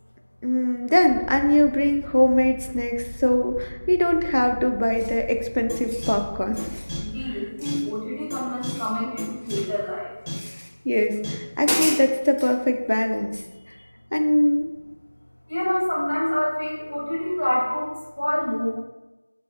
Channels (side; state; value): both; inverted; correlation -1.00